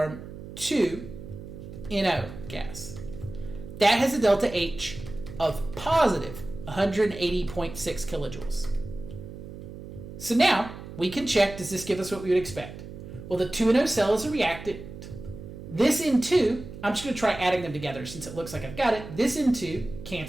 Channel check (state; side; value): noise; right; hum, 12 dB below the sound